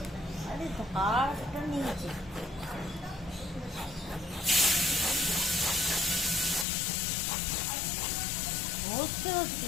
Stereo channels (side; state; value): right; drops out; at 6.7 s